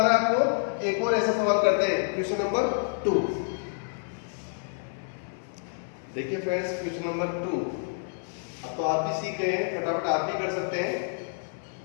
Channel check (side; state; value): right; silent; 59 dB below the other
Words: है आपको। एक और ऐसा सवाल करते हैं, क्वेश्चन नंबर 2। देखिए फ्रेंड्स, क्वेश्चन नंबर 2। अब तो आप भी सीख गए हैं, फटाफट आप भी कर सकते हैं।